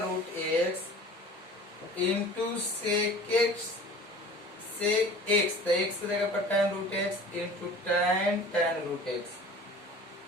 root x into sec x, sec x, तो एक्स की जगह पर tan root x into tan root x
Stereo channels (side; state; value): both; normal; correlation 0.42